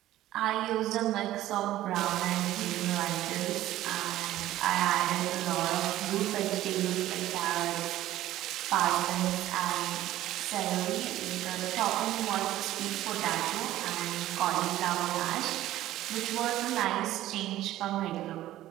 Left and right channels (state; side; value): quieter; left; 14.5 dB